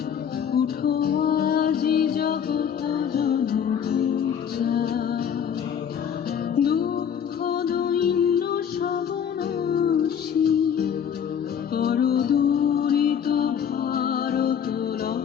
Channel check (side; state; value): right; quieter; 8.1 dB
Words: উঠো আজি জগত জনপূজা। দুঃখ দৈন্য সবনাশী, কর দূরিত ভারত